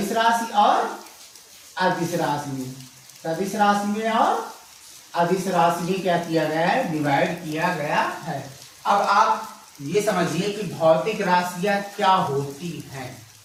राशि और अदिश राशि में। सदिश राशि में और अदिश राशि में क्या किया गया है? डिवाइड किया गया है। अब आप ये समझिए कि भौतिक राशियां क्या होती हैं।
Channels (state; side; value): identical; both; correlation 1.00